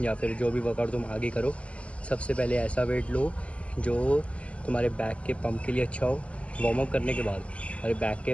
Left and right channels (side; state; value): right; late; 0.062 ms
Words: या फिर जो भी वर्कआउट तुम आगे करो, सबसे पहले ऐसा वेट लो जो तुम्हारे बैक के पंप के लिए अच्छा हो, वार्म अप करने के बाद तुम्हारे बैक के